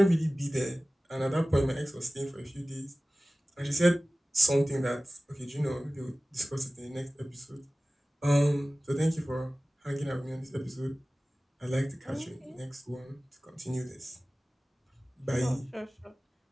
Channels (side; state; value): both; normal; correlation 0.97